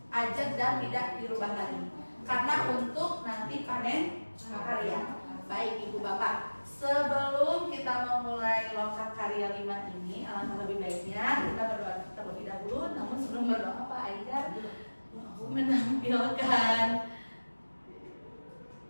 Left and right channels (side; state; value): both; inverted; correlation -1.00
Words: ajak dan tidak dirubah lagi. Karena untuk nanti panen karya. Baik Ibu Bapak, sebelum kita memulai Loka Karya 5 ini, alangkah lebih baiknya kita berdoa terlebih dahulu. Namun sebelum berdoa Pak Aidar mau menampilkan,